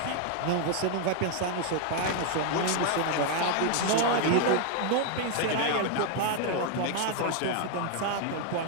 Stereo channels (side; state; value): both; different; correlation 0.00